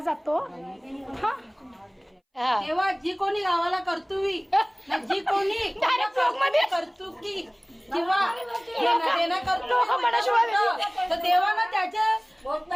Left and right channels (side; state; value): both; identical; correlation 1.00